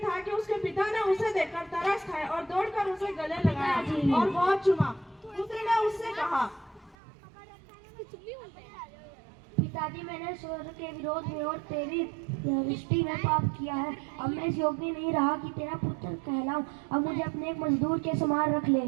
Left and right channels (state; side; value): drops out; left; at 7.0 s